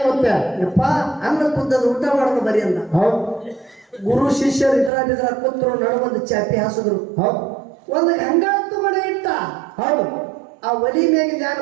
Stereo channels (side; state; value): left; drops out; at 4.9 s